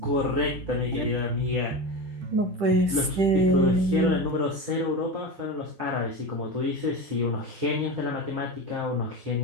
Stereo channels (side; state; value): left; late; 10 ms